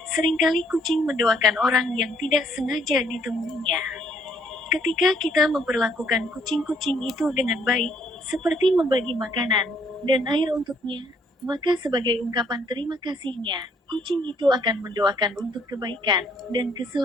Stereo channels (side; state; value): both; normal; correlation 0.66